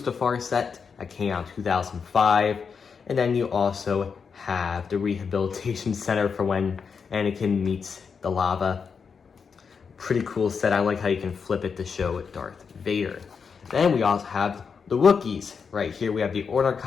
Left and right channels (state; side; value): quieter; right; 5.9 dB